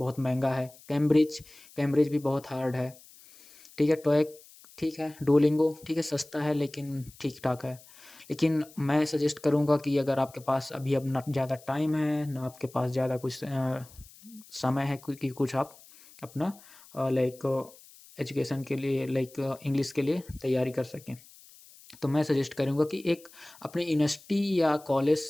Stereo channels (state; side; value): noise; left; hiss, 23 dB below the sound